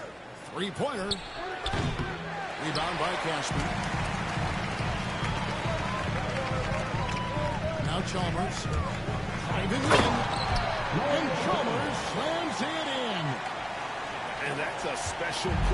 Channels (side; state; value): both; identical; correlation 1.00